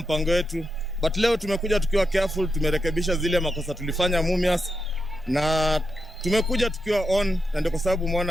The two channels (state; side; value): normal; both; correlation 0.86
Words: wetu. But leo tumekuja tukiwa careful, tumerekebisha zile makosa tulifanya Mumias na tumekuja tukiwa on, na ndio kwa sababu